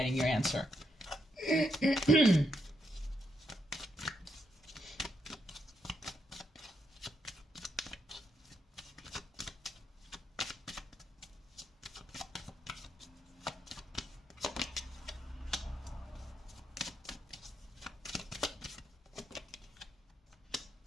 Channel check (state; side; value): normal; both; correlation 0.80